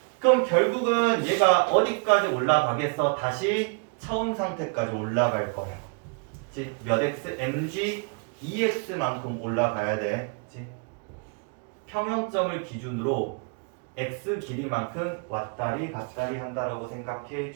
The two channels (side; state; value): left; quieter; 35.8 dB